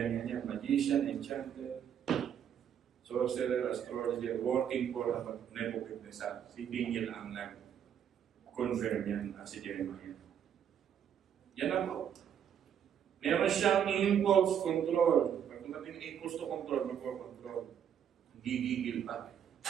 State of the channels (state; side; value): quieter; left; 8.9 dB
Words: yan. Magician, enchanter, sorcerer, astrologer, working for Nebuchadnezzar. Si Daniel ang nag-confirm yan at si Jeremiah. Yan ako. Meron siyang impulse control. Pag tumating impulse to control, mag-control. Gigigil pa.